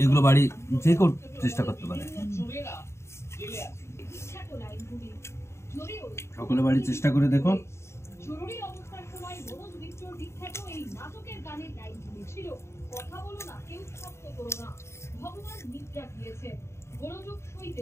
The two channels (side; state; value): right; late; 0.13 ms